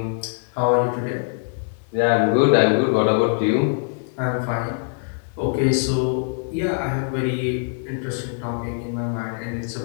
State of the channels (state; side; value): silent; right; 64 dB below the other